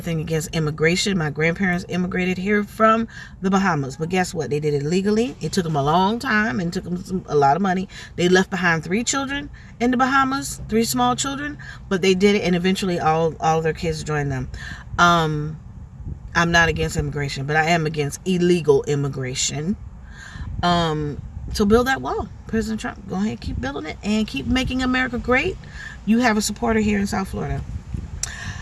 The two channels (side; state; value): both; identical; correlation 1.00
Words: against immigration. My grandparents immigrated here from the Bahamas. But guess what? They did it legally. It took them a long time and took them a lot of money. They left behind 3 children in the Bahamas, 3 small children. But they did it, and eventually all of their kids joined them. I'm not against immigration, but I am against illegal immigration. So build that wall. President Trump, go ahead, keep building it and keep making America great. You have a supporter here in South Florida.